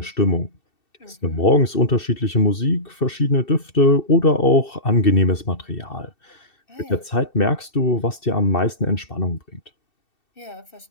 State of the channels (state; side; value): late; right; 2.7 ms